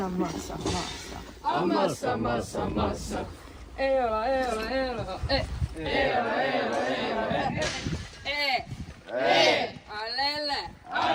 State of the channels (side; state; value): both; identical; correlation 1.00